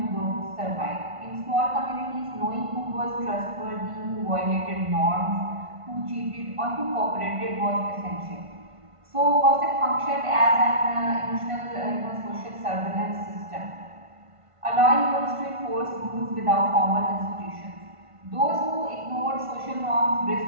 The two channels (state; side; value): late; left; 1.5 ms